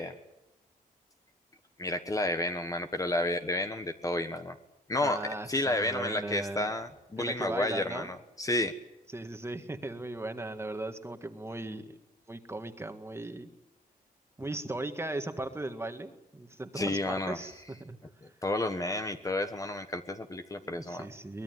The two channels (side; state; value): both; normal; correlation 0.48